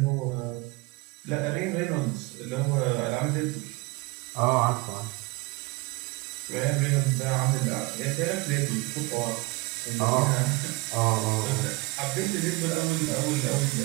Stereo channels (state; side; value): quieter; left; 24.2 dB